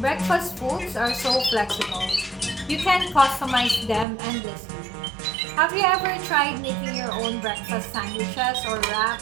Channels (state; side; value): drops out; left; at 4.0 s